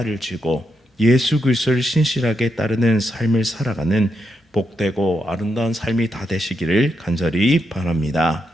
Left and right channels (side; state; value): both; normal; correlation 0.83